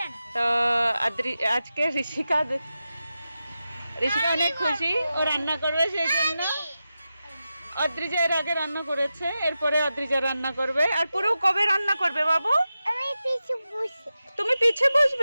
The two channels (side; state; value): both; inverted; correlation -0.92